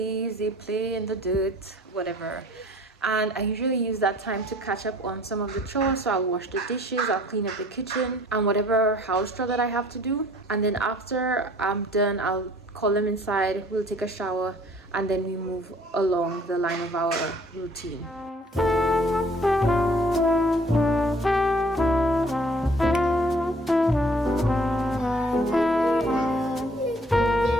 they play in the dirt, whatever. And I usually use that time to catch up on some of the chores. So I'll wash the dishes, I'll clean up the kitchen, and whatever house chore that I have to do. And then after I'm done, I'll call them inside, we'll take a shower, and then we move along the line of our routine.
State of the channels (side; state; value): both; normal; correlation 0.54